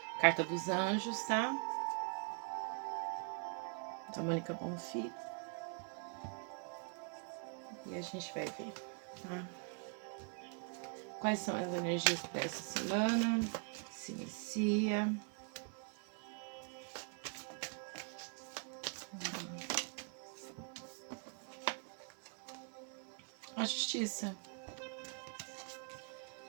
Carta dos Anjos, tá? Da Mônica Bonfim. E a gente vai ver, tá? Quais são as energias para essa semana? Se inicia. A Justiça.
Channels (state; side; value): quieter; left; 39.1 dB